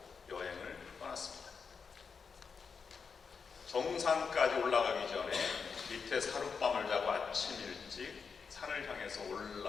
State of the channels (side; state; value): right; quieter; 5.6 dB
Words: 여행을 떠났습니다. 정상까지 올라가기 전에 밑에 하룻밤을 자고 아침 일찍 산을 향해서